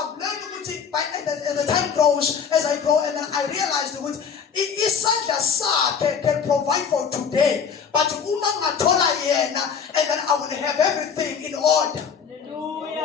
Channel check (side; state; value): right; quieter; 6.6 dB